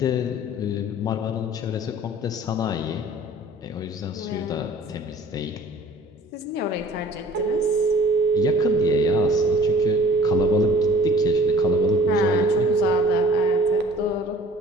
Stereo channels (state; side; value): normal; both; correlation 0.50